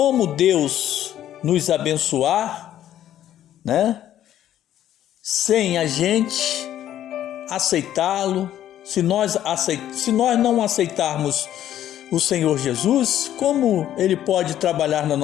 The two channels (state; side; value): quieter; right; 11.7 dB